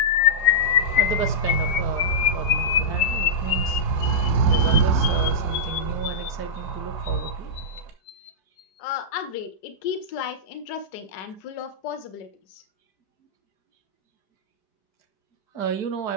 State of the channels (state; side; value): late; right; 4.9 ms